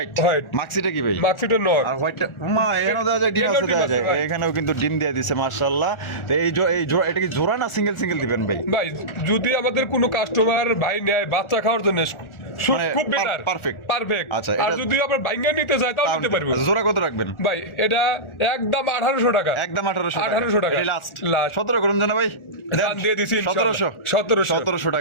মাক্সিটা কি ভাই? মাক্সিটা নর। আর হোয়াইটটা মা এখানেও দেওয়া যায়, ডিম আছে দেওয়া যায়, এখানেও কিন্তু ডিম দিয়ে দিছে মাশাআল্লাহ। তো এই জোড়া এটা কি জোড়া না সিঙ্গেল সিঙ্গেল দিবেন ভাই? ভাই যদি আমাদের কোনো কাস্টমার ভাই নেয় বাচ্চা খাওয়ার জন্য খুব বেটার, পারফেক্ট। আচ্ছা আর যদি আবার ভাঙ্গা নিতে চায় তাও নিতে পারবো। জোড়া কত রাখবেন ভাই? এটা একদম 1800 টাকা। একদম 1800 টাকা। এটা লাস্ট 17 করুন জানা ভাই, দাম দিয়ে দিছি 1700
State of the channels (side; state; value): right; late; 1.4 ms